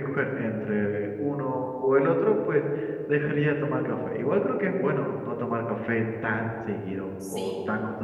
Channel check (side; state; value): both; identical; correlation 1.00